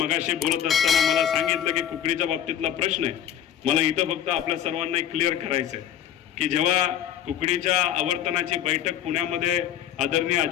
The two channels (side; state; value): right; quieter; 10.1 dB